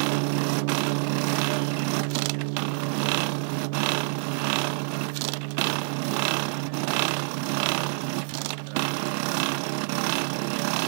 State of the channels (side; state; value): left; silent; digital silence